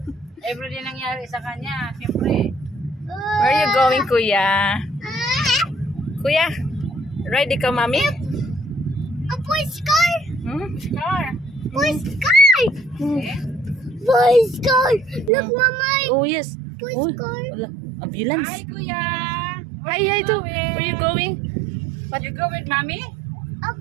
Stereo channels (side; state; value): left; drops out; at 15.3 s